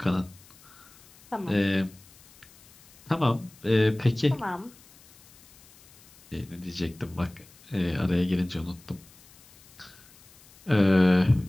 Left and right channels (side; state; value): left; noise; hiss, 25 dB below the sound